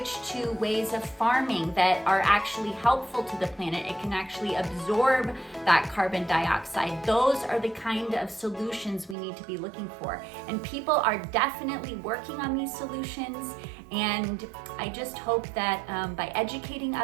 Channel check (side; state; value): left; drops out; at 9.2 s